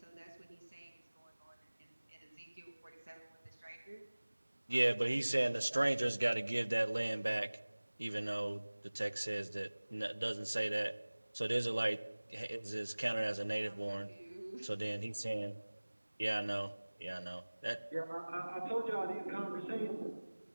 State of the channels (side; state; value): both; inverted; correlation -1.00